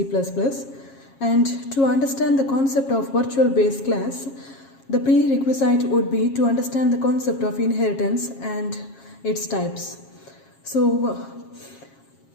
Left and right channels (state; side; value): late; right; 7.4 ms